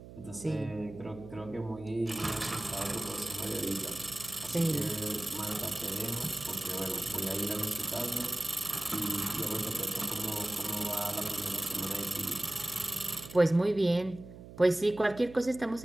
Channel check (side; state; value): right; noise; hum, 15 dB below the sound